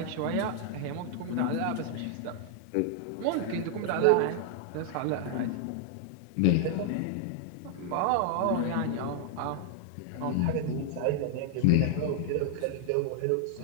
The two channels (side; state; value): both; different; correlation 0.00